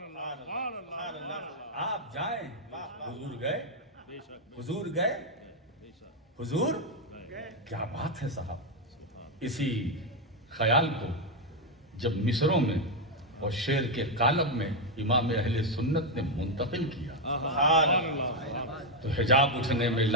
آپ جائیں، حضور گئے، حضور گئے، حضور کیا بات ہے صاحب۔ اسی خیال کو جب مصروں میں اور شعر کے قالب میں امام اہل سنت نے منتقل کیا تو حجاب اٹھنے میں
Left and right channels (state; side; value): normal; both; correlation 0.03